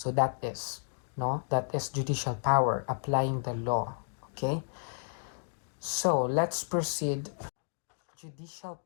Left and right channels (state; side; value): silent; right; digital silence